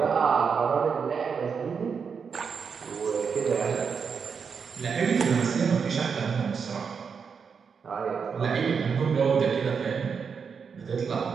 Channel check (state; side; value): quieter; left; 6.1 dB